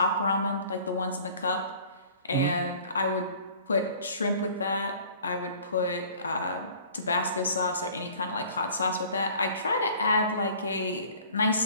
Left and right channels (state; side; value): inverted; both; correlation -0.49